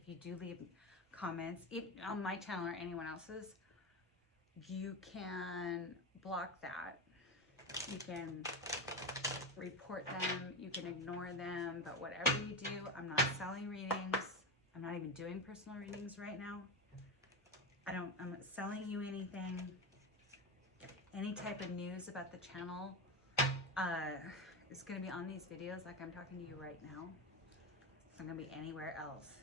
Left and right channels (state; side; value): normal; both; correlation 0.18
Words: you do leave comments on my channel or anyone else's, you can block that. You can report them, you can ignore them, but whatever you do, I'm not selling readings. I'm not even doing personal readings right now. I'm not selling you anything. Any type of news about the channel is going to be on these videos like I'm talking to you right now. It's not going to be anywhere else.